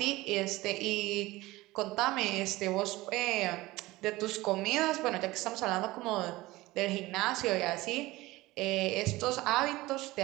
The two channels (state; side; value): quieter; left; 19.3 dB